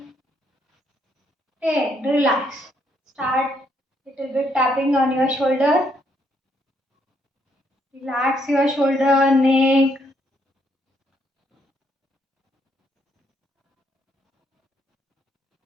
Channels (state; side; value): normal; both; correlation 0.73